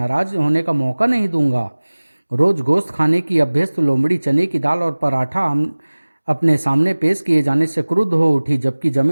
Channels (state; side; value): inverted; both; correlation -1.00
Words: होने का मौका नहीं दूंगा। रोज गोश्त खाने की अभ्यस्त लोमड़ी चने की दाल और पराठा अपने सामने पेश किए जाने से क्रुद्ध हो उठी, जबकि